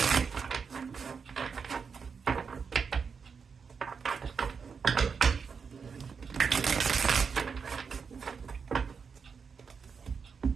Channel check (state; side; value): quieter; left; 5.8 dB